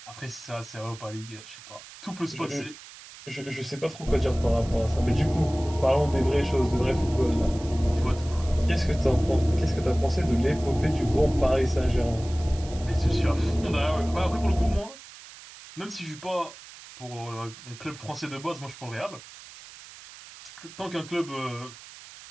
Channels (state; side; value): noise; right; hiss, 17 dB below the sound